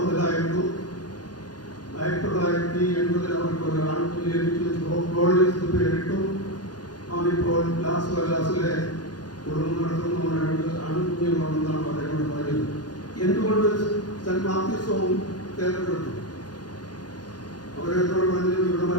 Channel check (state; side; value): late; right; 0.69 ms